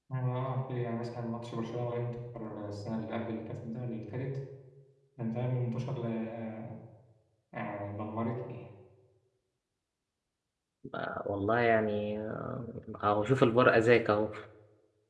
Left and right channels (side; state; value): both; identical; correlation 1.00